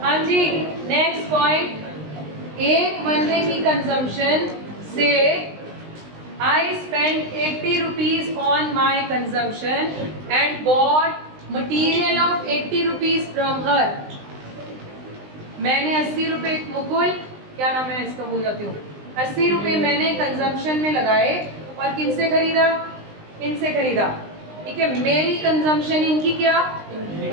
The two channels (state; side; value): late; left; 19 ms